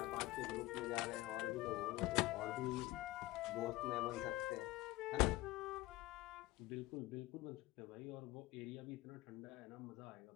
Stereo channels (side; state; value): right; quieter; 18.8 dB